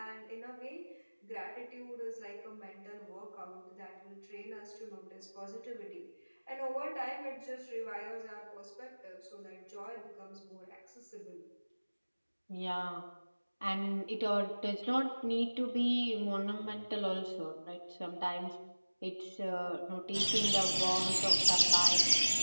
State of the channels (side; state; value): both; inverted; correlation -1.00